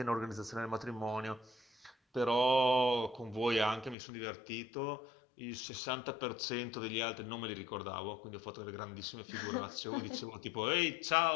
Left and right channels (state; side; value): drops out; right; at 4.0 s